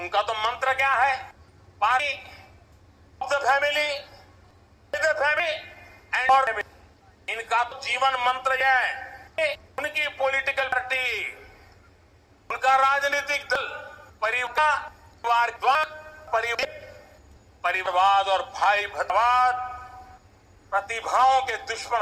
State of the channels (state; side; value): identical; both; correlation 1.00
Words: तो मंत्र क्या है? Party of the family, and family. इनका तो जीवन मंत्र है। उनकी पॉलिटिकल पार्टी, उनका राजनीतिक दल परिवारवाद और भाई भरवाद प्रतिभाओं के दुश्मन